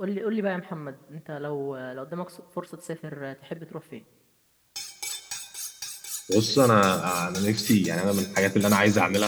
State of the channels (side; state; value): both; identical; correlation 1.00